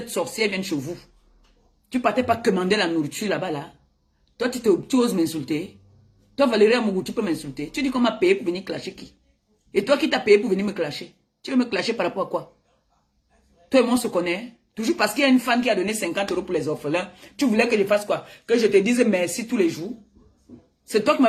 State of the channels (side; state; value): both; identical; correlation 1.00